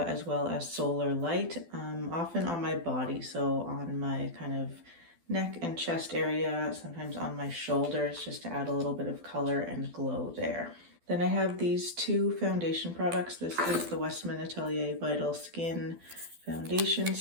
as well as Solar Light, often on my body, so on my kind of neck and chest area, sometimes on my shoulders, just to add a little bit of color and glow there. Then I have these 2 foundation products. This is the Westman Atelier Vital Skin Foundation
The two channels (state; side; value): late; left; 12 ms